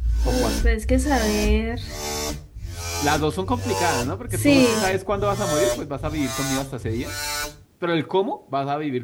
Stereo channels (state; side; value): identical; both; correlation 1.00